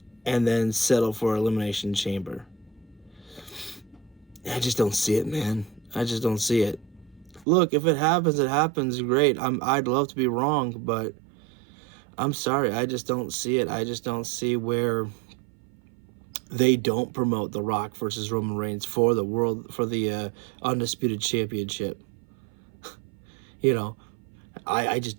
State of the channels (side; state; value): left; drops out; at 7.5 s